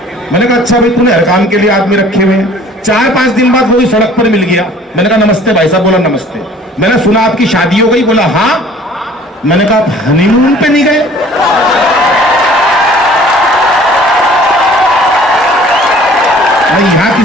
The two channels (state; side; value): normal; both; correlation 0.51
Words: मैंने कहा अच्छा भाई तूने हर काम के लिए आदमी रखे हुए हैं। 4-5 दिन बाद वो भी सड़क पर मिल गया। मैंने कहा नमस्ते भाई साहब, बोला नमस्ते। मैंने सुना आपकी शादी हो गई, बोला हाँ। मैंने कहा हनीमून पे नहीं गए? नहीं यहाँ